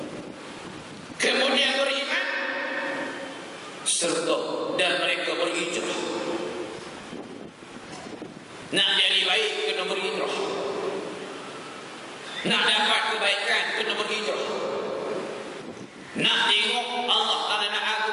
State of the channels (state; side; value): identical; both; correlation 1.00